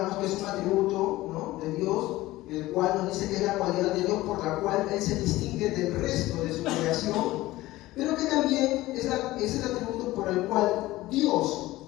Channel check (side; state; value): right; quieter; 17.6 dB